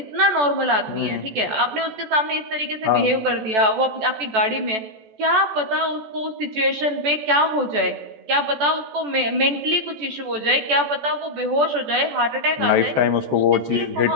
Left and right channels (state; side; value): late; left; 14 ms